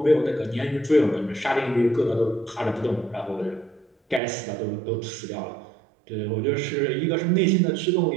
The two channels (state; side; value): drops out; left; at 4.2 s